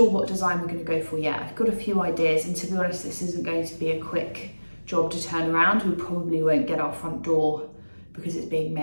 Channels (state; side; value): inverted; both; correlation -1.00